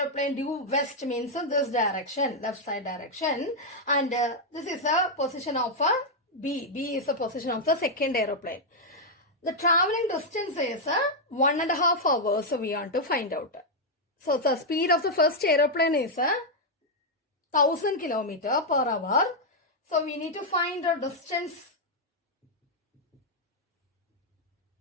due west means this direction, left side direction. And this is the position of B. B is the position of the second aeroplane. The traveling distance is 1.5 hours, so we want to find out. So the speed of the first aeroplane is 1000 km per hour. So we need to find the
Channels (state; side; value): normal; both; correlation -0.02